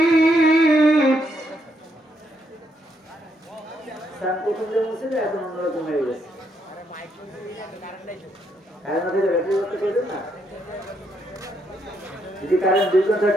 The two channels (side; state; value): both; normal; correlation 0.76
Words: প্রথমে মুছে দেয়, এখন অন্যরকম হয়ে গেছে। যদি কারেন্ট 2 ঘন্টা